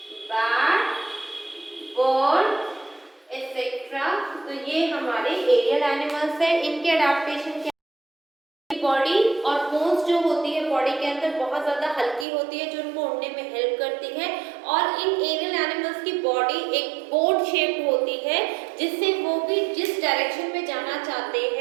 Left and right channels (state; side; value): drops out; left; at 12.2 s